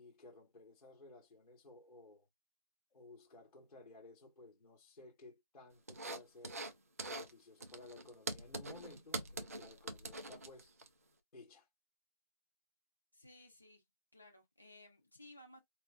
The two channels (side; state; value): both; inverted; correlation -0.36